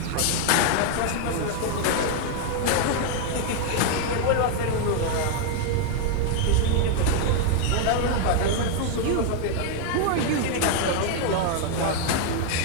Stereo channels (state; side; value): different; both; correlation 0.00